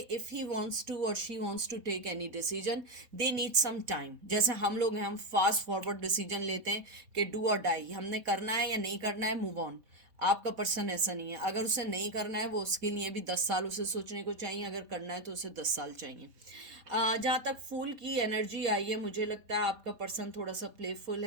इफ़ ही वांट्स टू और she wants to take any decision they need some time. जैसे हम लोग हैं, हम फास्ट फॉरवर्ड डिसीजन लेते हैं कि डू और डाई, हमने करना है या नहीं करना है, मूव ऑन। आपका पर्सन ऐसा नहीं है, अगर उसे नहीं करना है वो उसके लिए भी 10 साल उसे सोचने को चाहिए, अगर करना है तो उसे 10 साल चाहिए। जहाँ तक फूल की एनर्जी आई है, मुझे लगता है आपका पर्सन थोड़ा सा प्लेफुल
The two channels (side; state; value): left; late; 4.1 ms